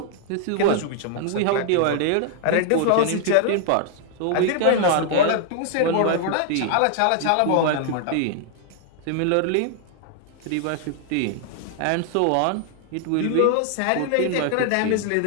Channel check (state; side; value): different; both; correlation 0.00